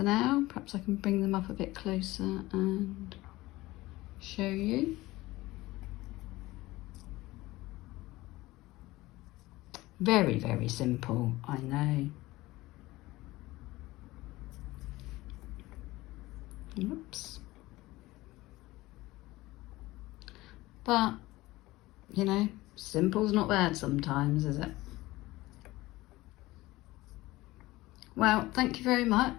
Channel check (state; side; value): quieter; right; 18.9 dB